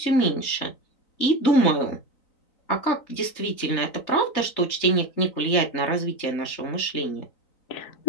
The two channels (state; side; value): late; right; 3.9 ms